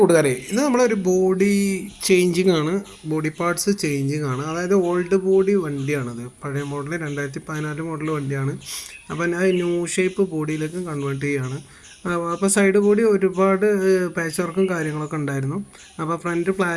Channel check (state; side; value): identical; both; correlation 1.00